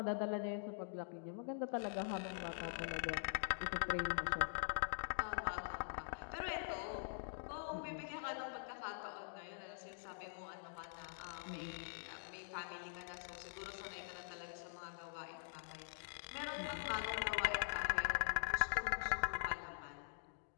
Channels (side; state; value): right; silent; digital silence